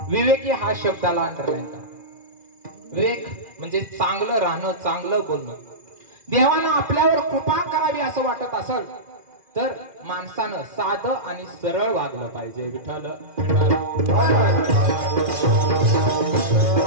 विवेकी हा शब्दाला अंडरलाईन करा. विवेक म्हणजे चांगलं राहणं, चांगलं बोलणं. देवानं आपल्यावर कृपा करावी असं वाटत असेल तर माणसानं साधं आणि सरळ वागलं पाहिजे. विठ्ठल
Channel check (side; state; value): left; late; 2.4 ms